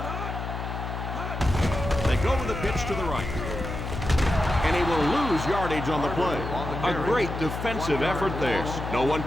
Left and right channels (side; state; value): left; noise; hum, 5 dB below the sound